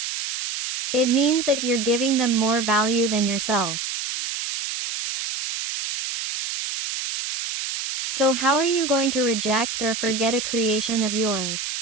It means that you're giving them more value than yourself. So how are you going to reject or forget a creation of yours?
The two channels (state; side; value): noise; right; hiss, 4 dB below the sound